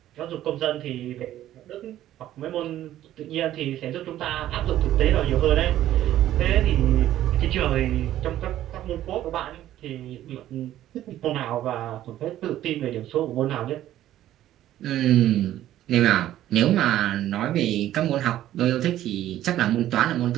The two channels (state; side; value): quieter; left; 13.0 dB